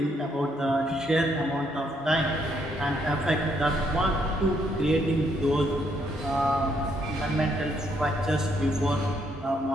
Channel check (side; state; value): both; normal; correlation 0.72